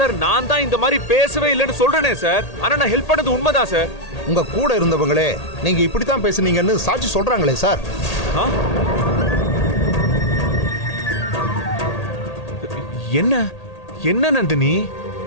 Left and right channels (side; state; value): right; late; 1.8 ms